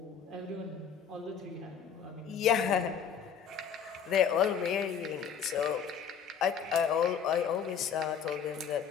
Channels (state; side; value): quieter; right; 7.2 dB